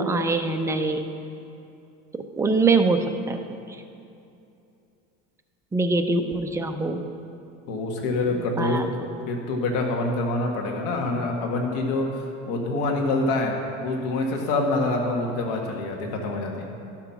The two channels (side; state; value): both; normal; correlation 0.41